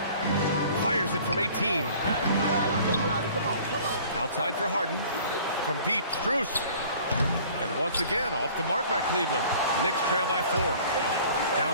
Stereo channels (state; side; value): inverted; both; correlation -0.49